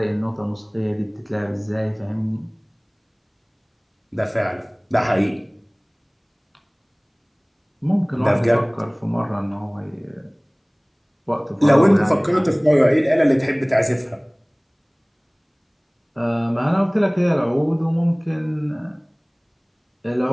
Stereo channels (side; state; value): both; identical; correlation 1.00